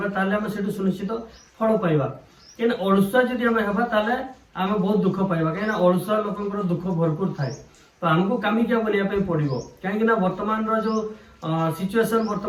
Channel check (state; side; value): identical; both; correlation 1.00